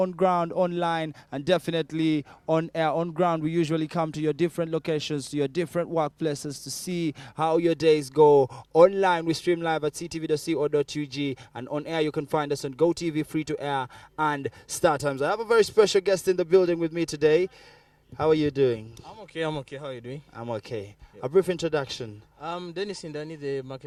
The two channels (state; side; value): identical; both; correlation 1.00